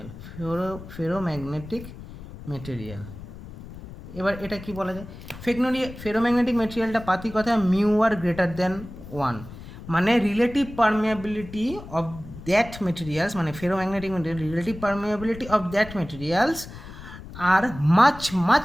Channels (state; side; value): noise; left; rumble, 14 dB below the sound